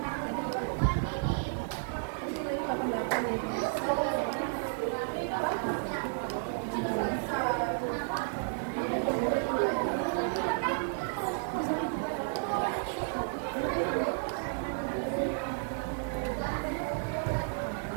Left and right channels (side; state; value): left; silent; digital silence